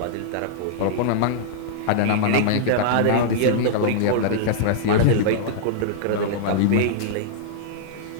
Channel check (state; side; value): different; both; correlation -0.02